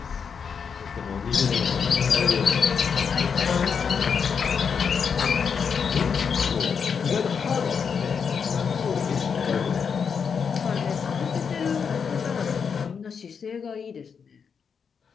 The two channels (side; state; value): right; quieter; 6.4 dB